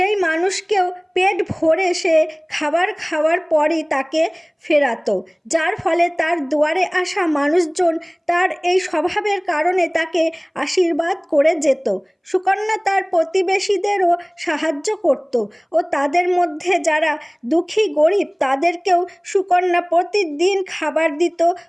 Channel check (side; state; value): both; identical; correlation 1.00